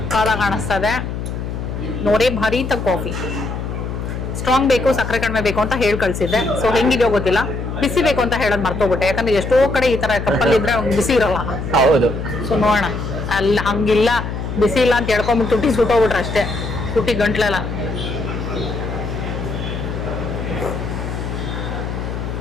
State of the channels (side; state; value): left; noise; hum, 5 dB below the sound